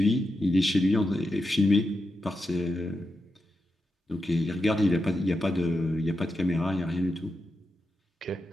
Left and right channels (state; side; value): normal; both; correlation 0.88